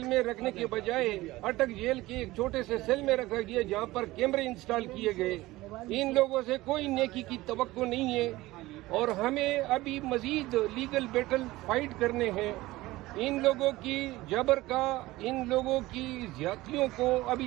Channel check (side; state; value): left; quieter; 18.5 dB